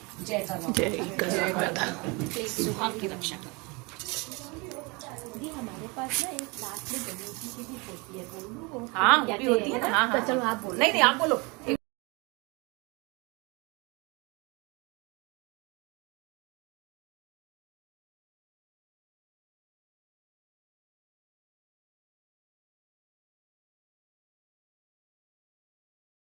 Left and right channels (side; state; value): left; quieter; 27.8 dB